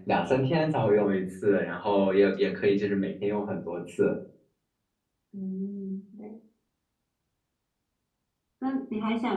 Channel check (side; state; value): both; identical; correlation 1.00